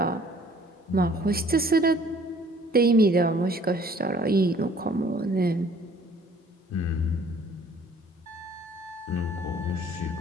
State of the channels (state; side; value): normal; both; correlation 0.56